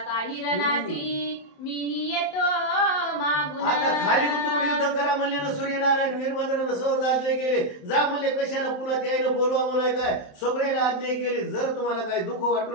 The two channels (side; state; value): right; late; 27 ms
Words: काही रणासी मीही येतो मागून. आता खाली उतरून युद्ध करा म्हणले ना सूर्यनारायण वीरभद्रानं सहज आज्ञा केले जा म्हणले कशाला पुन्हा त्यानं बोलवा म्हणाय काय सगळ्याला आज्ञा केली. जर तुम्हाला काय दुःख वाटू